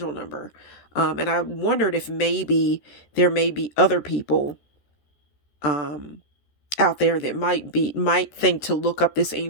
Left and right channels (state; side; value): late; right; 13 ms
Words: number. And I wondered if maybe there may be other people out there that might think to look up this